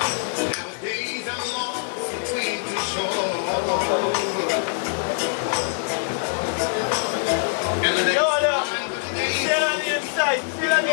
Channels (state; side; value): silent; right; digital silence